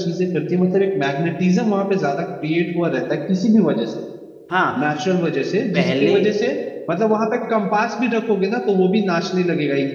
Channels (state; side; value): identical; both; correlation 1.00